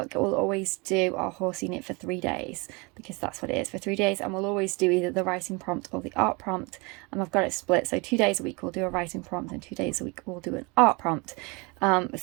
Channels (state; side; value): quieter; left; 28.3 dB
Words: we'll always do our horse unit for 3 days, because that's what it is, for 3 days, and we'll always do either the writing prompt or the art prompt, and I've got it split, so 2 days a week we'll do a writing prompt and 2 days a week we'll do an art prompt.